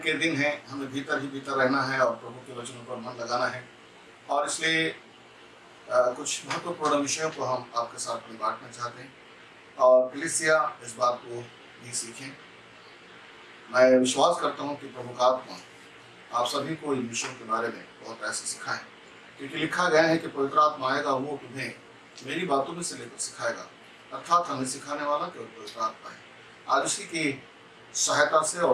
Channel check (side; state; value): both; identical; correlation 1.00